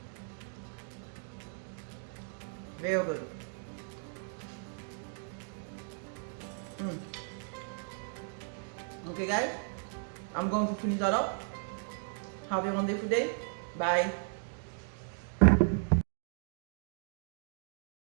Very good. Okay, guys. I'm going to finish that up. Have a wonderful day. Bye.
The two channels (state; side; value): silent; left; 54 dB below the other